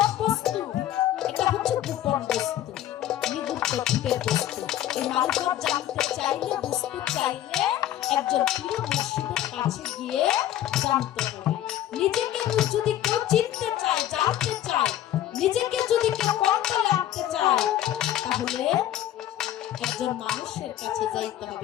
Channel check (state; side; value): quieter; right; 12.4 dB